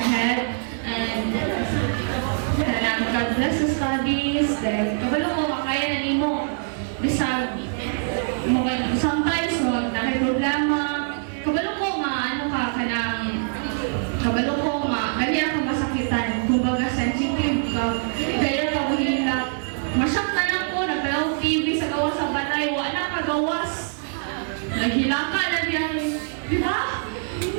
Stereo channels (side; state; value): left; silent; 58 dB below the other